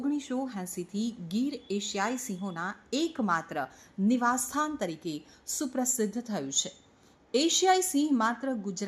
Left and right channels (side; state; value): both; identical; correlation 1.00